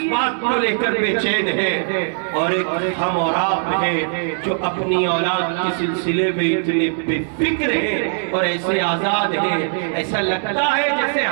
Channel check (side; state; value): left; silent; digital silence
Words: بات کو لے کر بے چین ہے, اور ایک ہم اور آپ ہیں جو اپنی اولاد کے سلسلے میں اتنے بے فکر ہے اور ایسے آزاد ہے. ایسا لگتا ہے جیسے